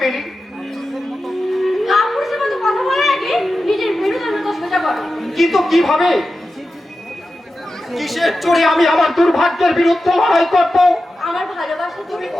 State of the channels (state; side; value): normal; both; correlation 0.92